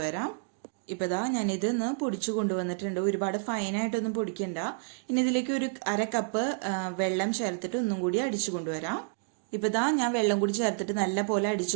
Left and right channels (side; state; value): left; silent; digital silence